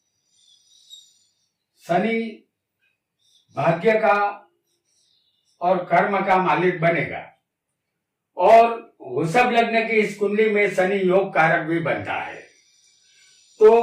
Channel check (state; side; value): identical; both; correlation 1.00